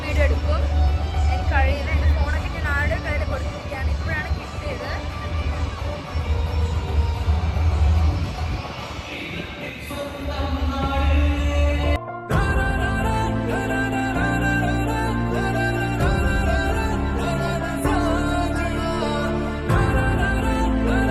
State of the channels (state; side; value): identical; both; correlation 1.00